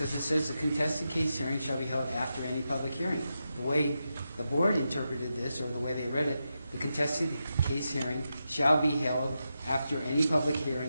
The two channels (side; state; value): both; inverted; correlation -0.88